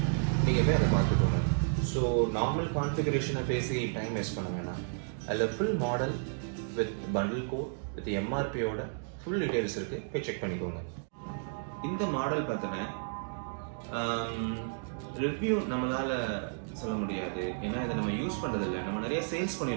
நீங்கள் போய் அதை பார்த்துக்கோங்க. ஸோ நார்மல் கான்ஃபிகரேஷனை பேசி டைம் வேஸ்ட் பண்ண வேணாம். அதில் full model with bundle code with எம்ஆர்பியோட ஃபுல் டீட்டெயில்ஸ் இருக்குது, போய் செக் பண்ணிக்கோங்க. இந்த மாடல் பார்த்தீங்கன்னா ரிவ்யூ நம்மளால் சொல்ல முடியாது, ஏன்னா இதை நம்ம யூஸ் பண்ணுறதில்லை. நம்ம நிறைய சேல்ஸ்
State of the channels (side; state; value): left; silent; digital silence